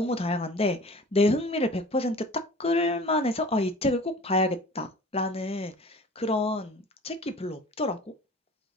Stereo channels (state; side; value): normal; both; correlation 0.43